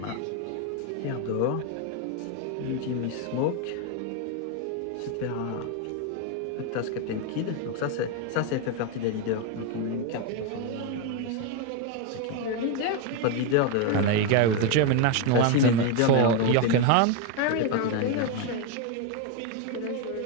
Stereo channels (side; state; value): both; different; correlation 0.02